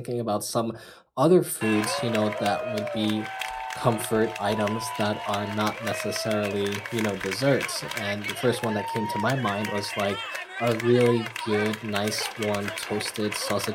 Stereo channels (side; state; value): both; identical; correlation 1.00